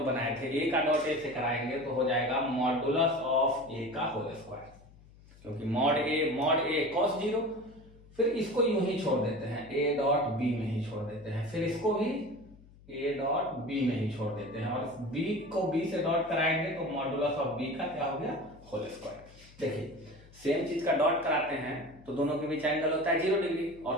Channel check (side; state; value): left; noise; hum, 23 dB below the sound